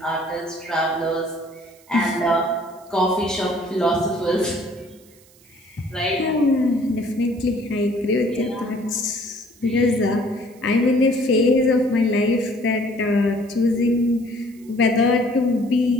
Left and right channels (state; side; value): noise; right; hiss, 28 dB below the sound